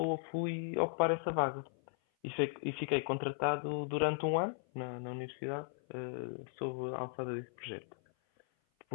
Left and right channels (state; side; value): silent; right; 53 dB below the other